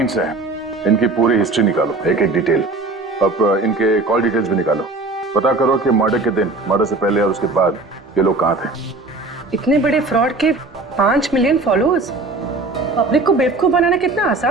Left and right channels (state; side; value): quieter; left; 3.3 dB